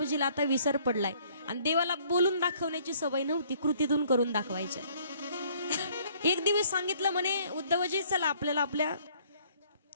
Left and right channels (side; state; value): both; inverted; correlation -0.60